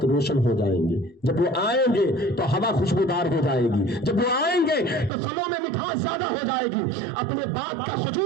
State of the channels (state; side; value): drops out; left; at 5.1 s